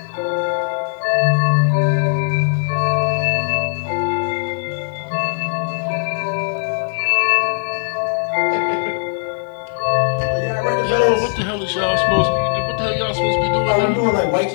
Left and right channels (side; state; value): right; silent; 60 dB below the other